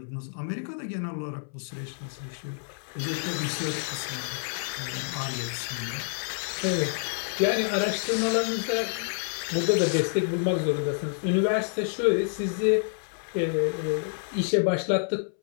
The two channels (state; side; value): silent; right; 59 dB below the other